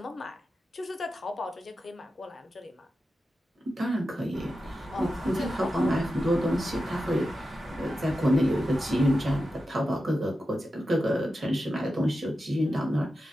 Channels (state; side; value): normal; both; correlation 0.91